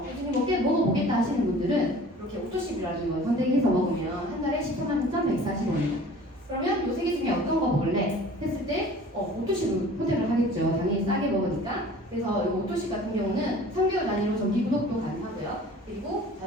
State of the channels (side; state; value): both; normal; correlation 0.46